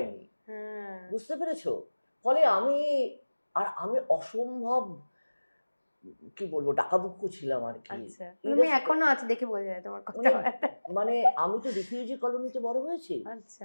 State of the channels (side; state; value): both; inverted; correlation -1.00